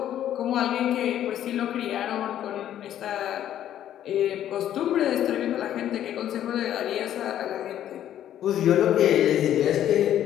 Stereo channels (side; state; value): right; quieter; 11.2 dB